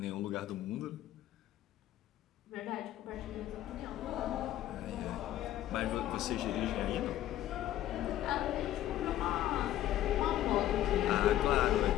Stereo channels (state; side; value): quieter; right; 13.1 dB